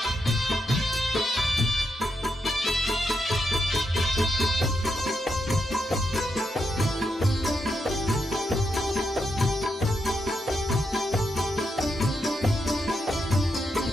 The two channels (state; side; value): normal; both; correlation 0.83